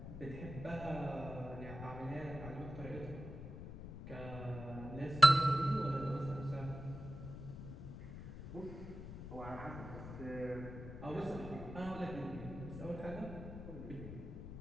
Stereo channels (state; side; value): noise; left; rumble, 10 dB below the sound